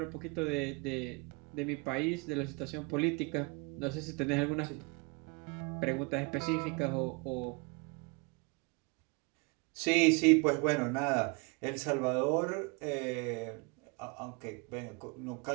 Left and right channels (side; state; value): left; quieter; 30.0 dB